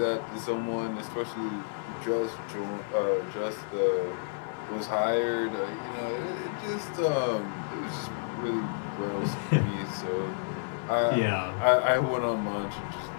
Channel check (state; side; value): silent; right; digital silence